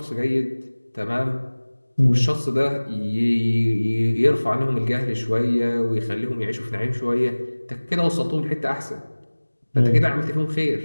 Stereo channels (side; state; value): both; inverted; correlation -1.00